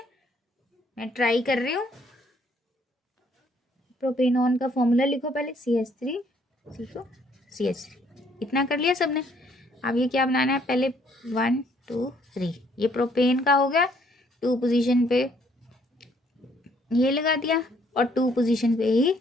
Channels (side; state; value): both; normal; correlation 0.65